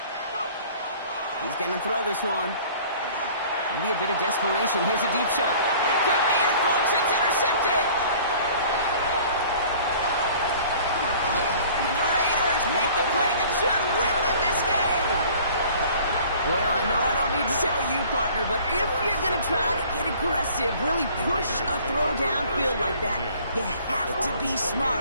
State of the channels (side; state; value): both; inverted; correlation -0.50